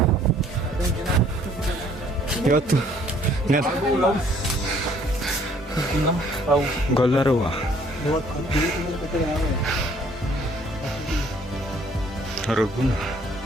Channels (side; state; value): both; normal; correlation 0.60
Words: ಇವತ್ತು ಗೊಲ್ಲರುವ ರಘುನ